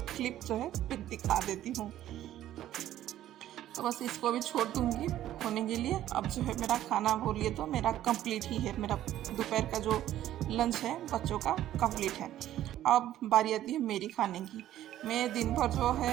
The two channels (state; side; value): quieter; left; 12.8 dB